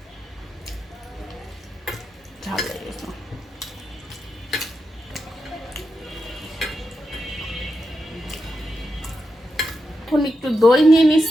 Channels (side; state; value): both; normal; correlation 0.87